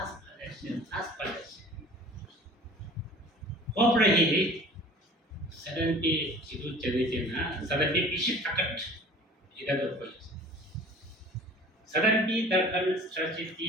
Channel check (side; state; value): both; normal; correlation 0.45